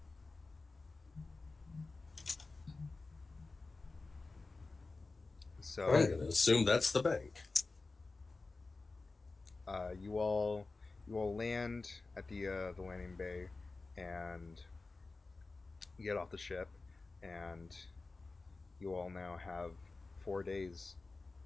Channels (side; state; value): right; quieter; 3.7 dB